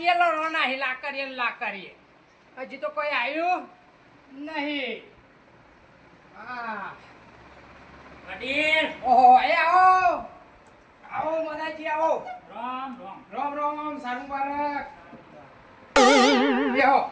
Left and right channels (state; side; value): identical; both; correlation 1.00